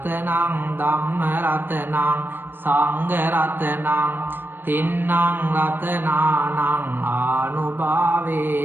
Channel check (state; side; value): late; left; 0.096 ms